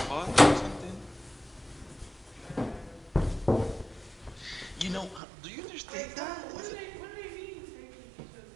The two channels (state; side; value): drops out; left; at 5.2 s